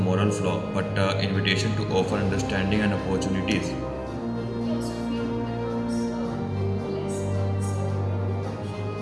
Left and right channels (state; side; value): identical; both; correlation 1.00